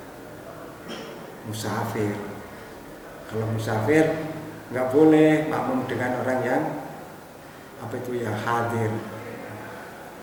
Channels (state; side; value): identical; both; correlation 1.00